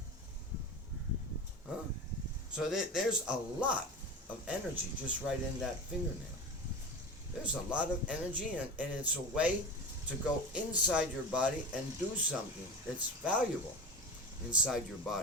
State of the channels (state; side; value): normal; both; correlation 0.29